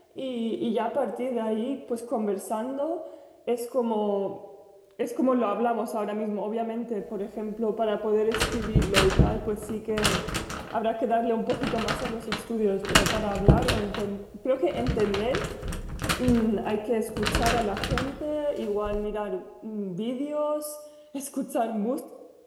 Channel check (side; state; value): both; identical; correlation 1.00